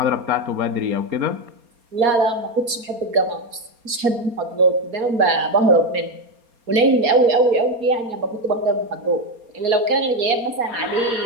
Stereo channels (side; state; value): left; late; 4.3 ms